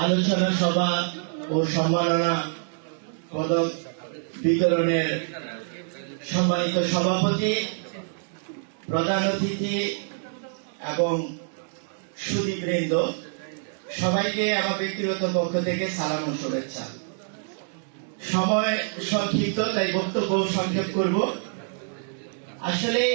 আলোচনা সভা ও সম্মাননা পদক বিতরণের সম্মানিত সভাপতি, প্রধান অতিথি এবং সুধীবৃন্দ, সবাইকে আমার ব্যক্তিগত পক্ষ থেকে সালাম ও শুভেচ্ছা। সময় সংক্ষিপ্ত, তাই বক্তব্য সংক্ষেপ করব। আসলে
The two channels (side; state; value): left; silent; digital silence